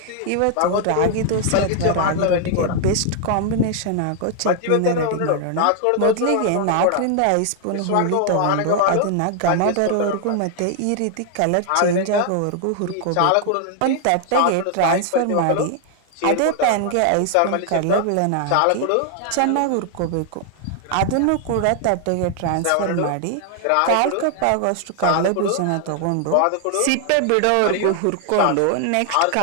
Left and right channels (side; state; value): both; different; correlation 0.00